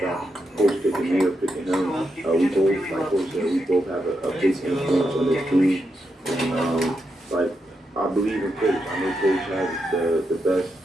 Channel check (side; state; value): both; normal; correlation 0.84